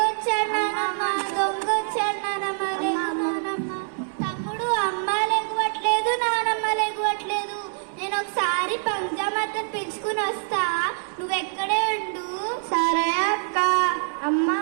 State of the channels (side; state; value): left; silent; digital silence